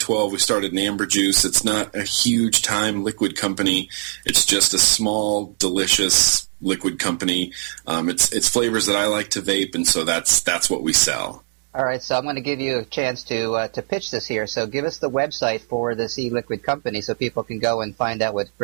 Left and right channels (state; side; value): silent; left; digital silence